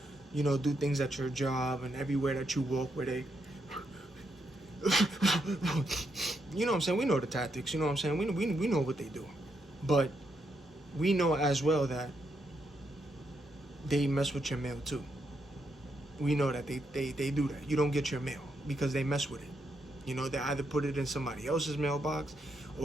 you know, do things at your job and everywhere that you walk where they, you know what I'm saying? We know the tactics, you know what I'm saying? We know what they do. But we know as well that they mess with your mail too. We know that they do that. You don't get your mail because they mess with it. You know, they either put it in somebody else's mailbox,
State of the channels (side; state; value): both; normal; correlation 0.79